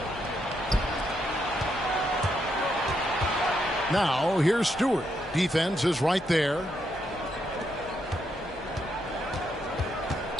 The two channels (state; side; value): normal; both; correlation 0.79